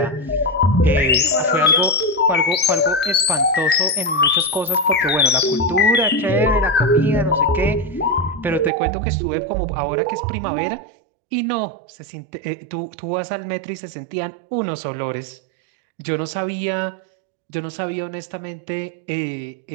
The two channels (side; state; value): left; drops out; at 8.7 s